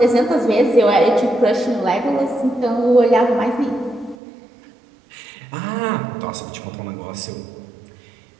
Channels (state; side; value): drops out; left; at 4.2 s